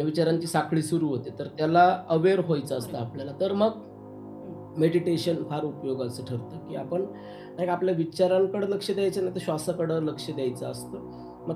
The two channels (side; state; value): both; identical; correlation 1.00